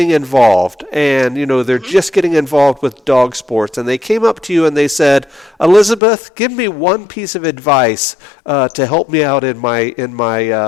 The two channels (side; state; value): right; drops out; at 6.0 s